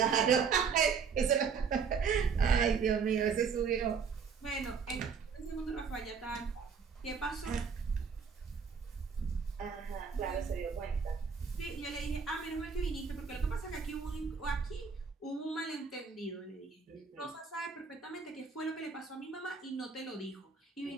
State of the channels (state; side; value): quieter; left; 5.9 dB